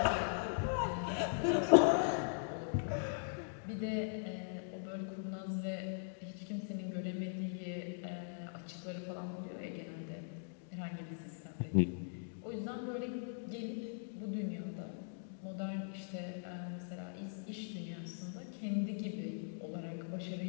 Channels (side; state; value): right; silent; digital silence